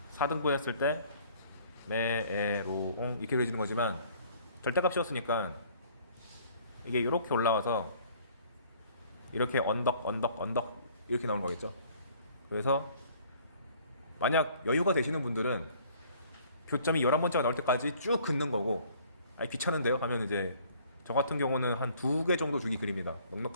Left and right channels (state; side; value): inverted; both; correlation -0.56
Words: 4등분 했을 때 메에로옹 이렇게 그려지는 거지만 절대값 씌웠으니까 이게 이렇게 올라와서 이렇게 언덕 이렇게 나오는 거겠죠. 그래서 만약 여유가 되시는 분들은 교점이 11번째가 나올 때까지 쭉 긋는 거고, 아니 귀찮은데요? 하면 이제 저 같은 경우는 한 2개 정도 주기 그립니다.